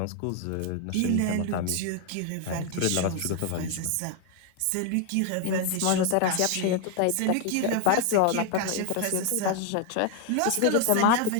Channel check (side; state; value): both; different; correlation 0.01